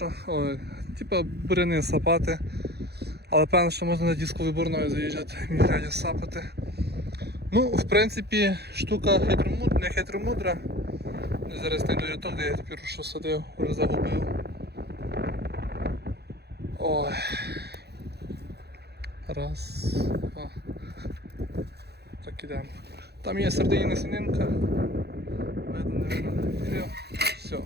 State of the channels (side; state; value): left; late; 0.48 ms